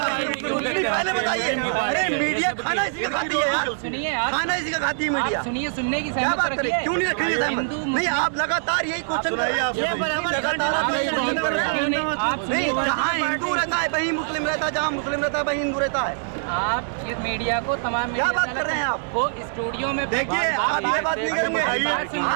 पहले बताइए। अरे मीडिया खाना इसी का खाती है यार, सुनिए यार, खाना इसी का खाती है मीडिया। सुनिए, सुनने की क्या बात करें? क्यों नहीं रखेंगे सहमत? नहीं, आप लगातार यही क्वेश्चन कर रहे हैं। नहीं, जहाँ हिंदू रहता है वहीं मुस्लिम रहता है, जहाँ मुस्लिम रहता है वहीं हिंदू रहता है। आप ये मीडिया को तमाम क्या बात कर रहे हैं आप? वो स्टूडियो में देखिए, आप ये बात नहीं करेंगे।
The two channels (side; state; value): left; silent; digital silence